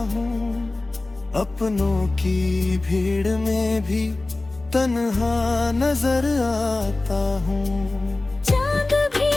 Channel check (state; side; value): quieter; right; 3.0 dB